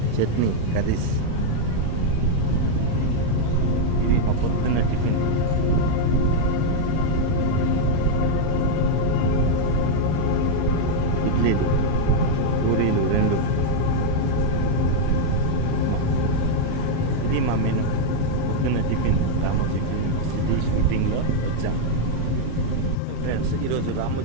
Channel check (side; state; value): both; different; correlation 0.00